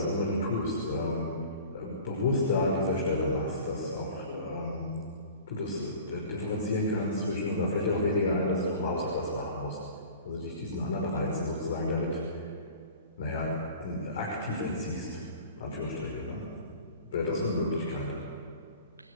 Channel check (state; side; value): inverted; both; correlation -0.43